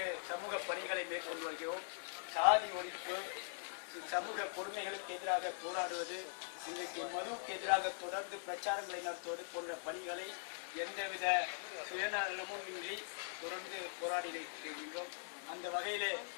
சமூக பணிகளை மேற்கொண்டு வருகிறோம். சாதி ஒழிப்பு, சமூக கொடுமைகளுக்கு எதிராக போராடுவது, இன்றைக்கு மதுவுக்கு எதிராக தொடர்ந்து பிரச்சாரங்களை நடத்துவது போன்ற பணிகளை எந்தவித சுயநலமும் இன்றி தொடர்ந்து போராடி இருக்கின்றோம். அந்த வகையிலே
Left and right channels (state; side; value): silent; right; digital silence